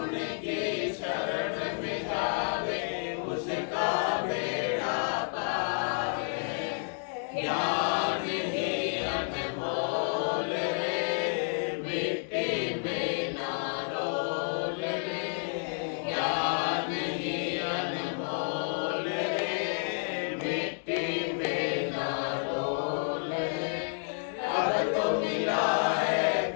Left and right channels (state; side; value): silent; right; 58 dB below the other